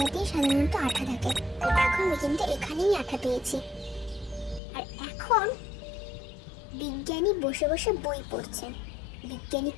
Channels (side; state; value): right; drops out; at 4.6 s